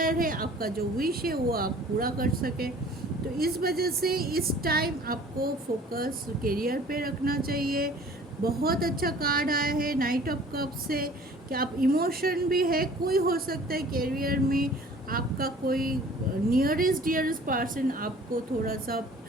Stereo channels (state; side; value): normal; both; correlation 0.49